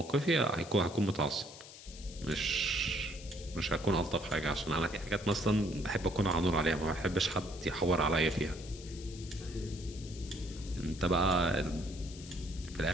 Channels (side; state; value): left; noise; hiss, 16 dB below the sound